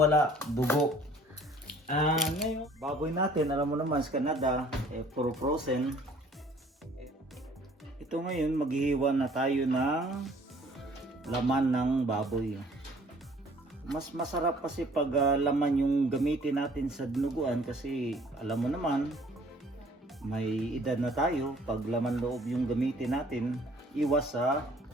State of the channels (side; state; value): both; normal; correlation 0.55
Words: dugo. Ngayon, baboy natin, alam mo naman sa Canada, puro frozen. Ito ngayon, maghihiwa na tayo ng laman ng baboy. Mas masarap kasi pag laman yung gamitin natin sa dinuguan kasi alam mo naman may edad na tayo, pag laman loob yung gamitin natin iwas sa